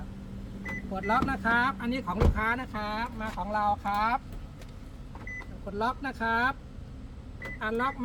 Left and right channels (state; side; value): identical; both; correlation 1.00